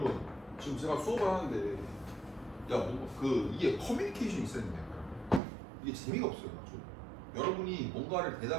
지금 제가 수업을 하는데 이게 커뮤니케이션이 있어야 된다. 이게 재미가 없어요. 좀. 여러분이 뭔가를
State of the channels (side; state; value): left; drops out; at 5.4 s